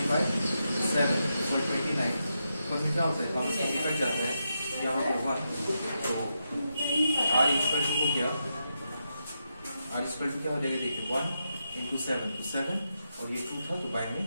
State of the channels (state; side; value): inverted; both; correlation -0.85